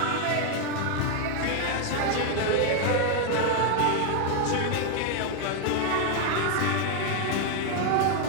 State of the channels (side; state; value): both; different; correlation 0.00